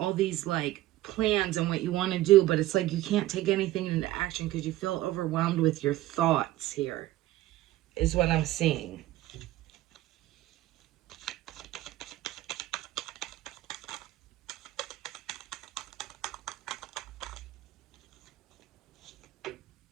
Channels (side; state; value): left; quieter; 15.7 dB